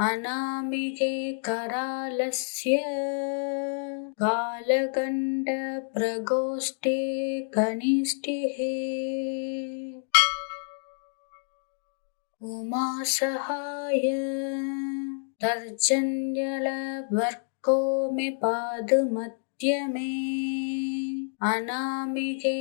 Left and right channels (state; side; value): silent; right; digital silence